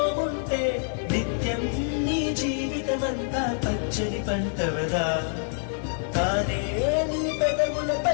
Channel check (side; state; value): right; silent; 57 dB below the other